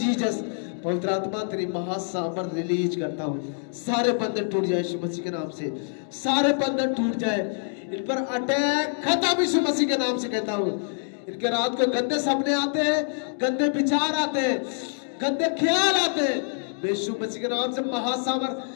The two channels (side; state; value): right; silent; digital silence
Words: पवित्र आत्मा तेरी महासामर्थ रिलीज करता हूँ। सारे बंधन टूट जाए यीशु मसीह के नाम से, सारे बंधन टूट जाए। इन पर अटैक खत्म यीशु मसीह के नाम से कहता हूँ। इनके रात को गंदे सपने आते हैं, गंदे विचार आते हैं, गंदे ख्याल आते हैं। मैं यीशु मसीह के नाम से